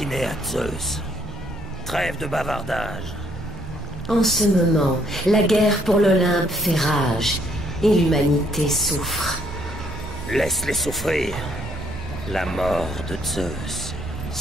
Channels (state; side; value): noise; right; rumble, 12 dB below the sound